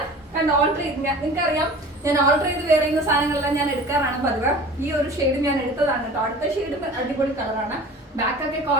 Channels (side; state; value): both; normal; correlation 0.41